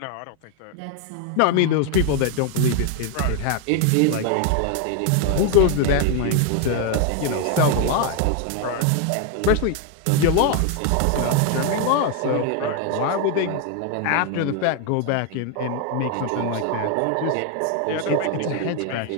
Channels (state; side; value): different; both; correlation 0.01